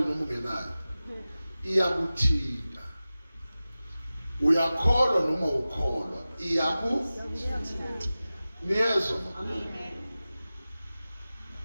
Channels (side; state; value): both; inverted; correlation -0.96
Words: ungenayo. Iyakuthinta. Uyakholwa noma ukholwa. Niyezwa. Amen.